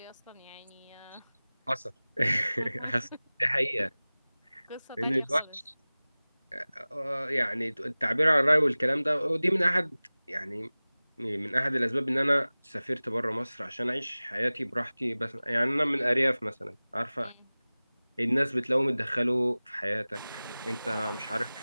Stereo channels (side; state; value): both; inverted; correlation -0.99